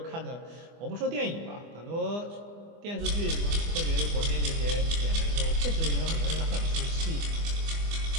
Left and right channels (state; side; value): late; left; 24 ms